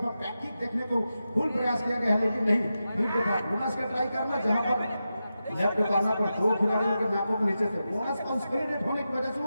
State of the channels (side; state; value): both; inverted; correlation -0.90